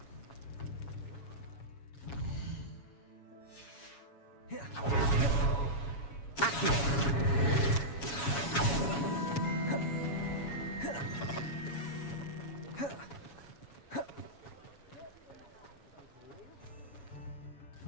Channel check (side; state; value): right; late; 7.2 ms